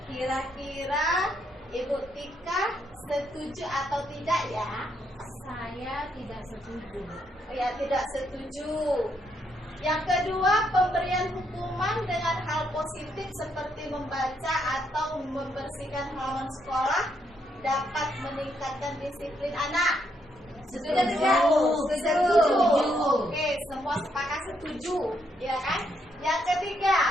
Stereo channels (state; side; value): normal; both; correlation 0.76